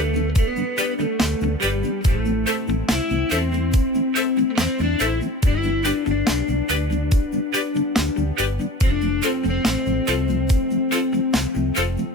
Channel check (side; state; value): both; normal; correlation 0.46